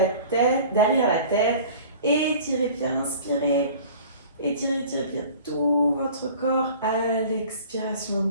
tête, derrière la tête. Étirez bien, inspirez. Étirez bien tout votre corps à l'expiration.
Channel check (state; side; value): inverted; both; correlation -0.44